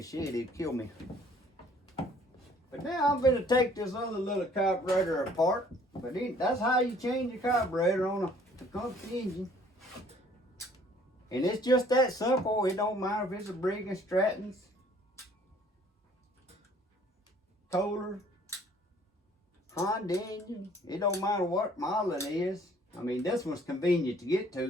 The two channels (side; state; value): both; normal; correlation 0.57